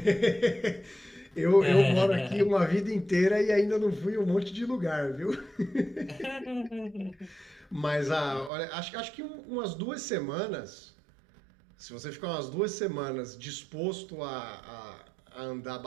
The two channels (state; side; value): drops out; left; at 8.5 s